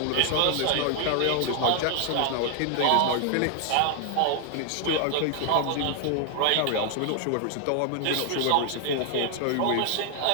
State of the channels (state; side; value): different; both; correlation 0.00